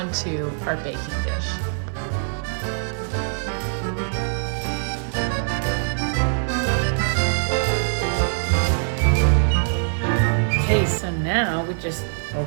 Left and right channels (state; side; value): silent; left; 63 dB below the other